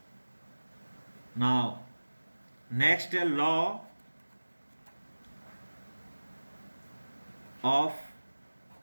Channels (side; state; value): both; inverted; correlation -1.00